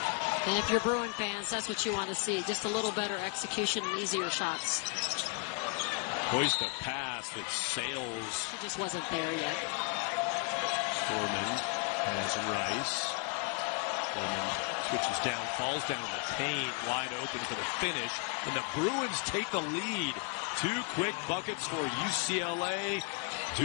And if you're Bruin fans, that's what you want to see. Just a little better execution and easier shots. Hoist the pass that sails. She just wasn't there yet. Foreman has Rice. Foreman switches down, falls down in the paint, wide open for the finish. And the Bruins take the lead. 2 quick buckets for UCLA.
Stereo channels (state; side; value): quieter; right; 34.0 dB